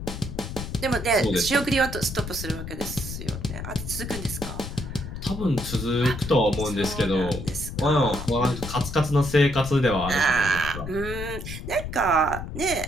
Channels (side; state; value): left; noise; rumble, 8 dB below the sound